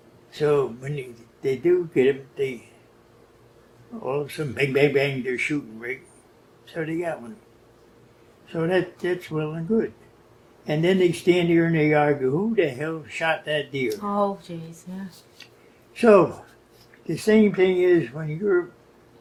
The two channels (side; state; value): both; identical; correlation 1.00